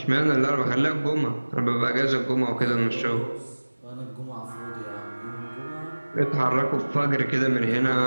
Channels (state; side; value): inverted; both; correlation -1.00